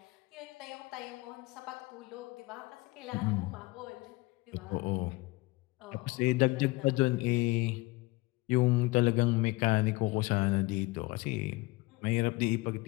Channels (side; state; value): right; quieter; 22.5 dB